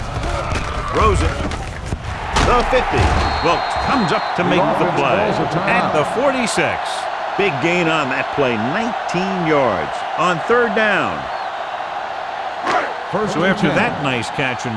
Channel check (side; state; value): both; identical; correlation 1.00